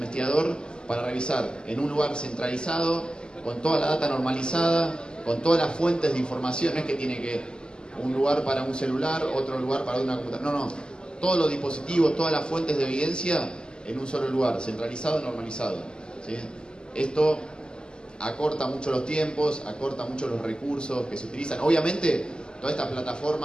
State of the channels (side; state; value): right; late; 0.047 ms